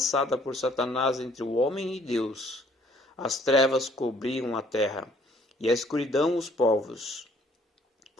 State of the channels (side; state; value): both; normal; correlation 0.61